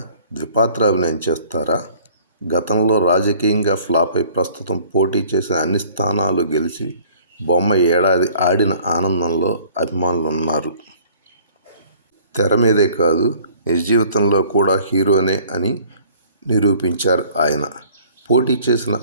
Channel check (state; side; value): inverted; both; correlation -0.53